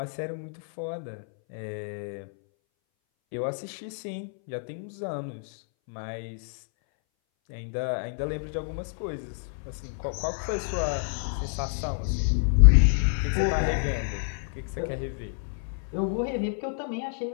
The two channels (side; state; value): right; silent; 59 dB below the other